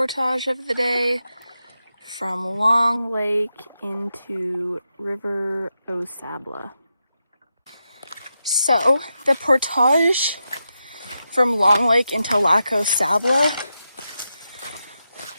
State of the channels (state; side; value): inverted; both; correlation -0.88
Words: of the day from Long Lake into River Aux Sables. So, the portage from Long Lake into Lac Aux Sables